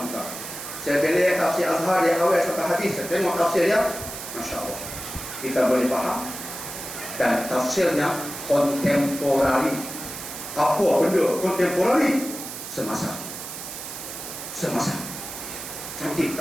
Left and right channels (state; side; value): noise; right; hiss, 9 dB below the sound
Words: Saya beli tafsir Azhar dia awal sampai hadis. Saya tengok tafsir dia, Masya Allah. Kita boleh faham. Dan tafsirnya kontemporari. Apa benda kontemporari? Semasa. Cantik